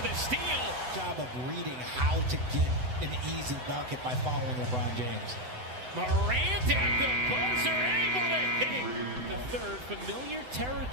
the steal. Job of reading how to get an easy bucket by following LeBron James. Morant at the buzzer, able to hit. The third, familiar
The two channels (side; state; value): left; late; 7.9 ms